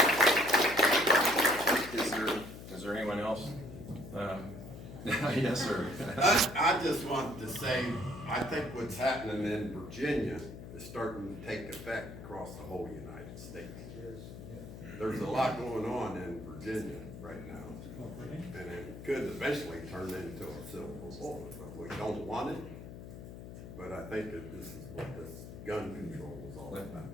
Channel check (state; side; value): noise; left; hum, 12 dB below the sound